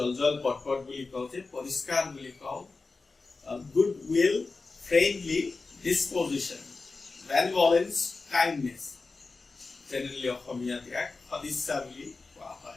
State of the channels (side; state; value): right; quieter; 3.9 dB